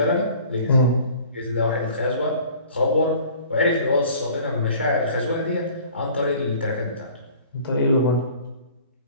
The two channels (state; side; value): inverted; both; correlation -0.49